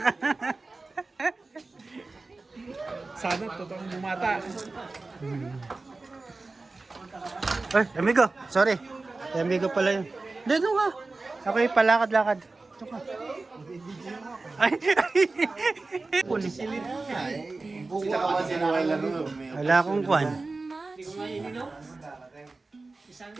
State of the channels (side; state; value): left; quieter; 3.5 dB